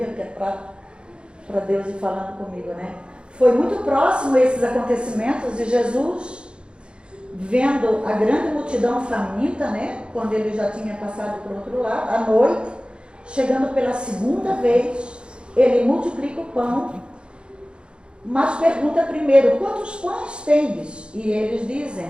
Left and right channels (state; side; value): late; left; 0.054 ms